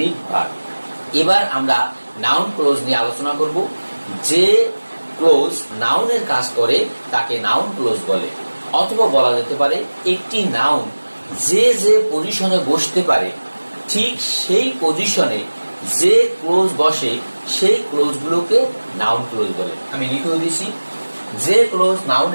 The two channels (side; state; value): both; inverted; correlation -1.00